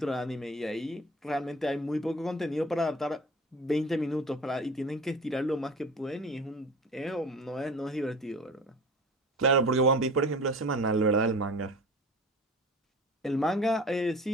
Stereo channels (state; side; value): normal; both; correlation 0.39